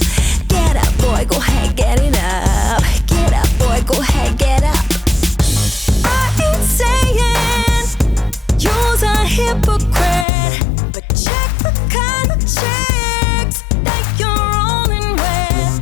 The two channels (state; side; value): drops out; right; at 10.2 s